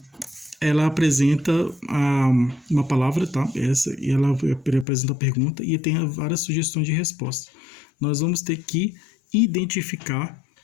ela apresenta uma palavra, tá? E ela apresenta a pergunta e tem várias sugestões de resposta. Nós vamos ter que identificar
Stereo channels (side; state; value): right; drops out; at 4.9 s